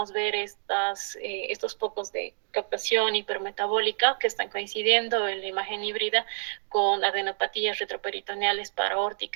ver estos focos de captación hipermetabólica que están coincidiendo en la imagen híbrida con adenopatías retroperitoneales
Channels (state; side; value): silent; left; 59 dB below the other